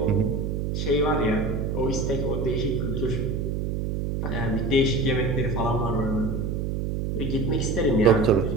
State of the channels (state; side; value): noise; right; hum, 1 dB below the sound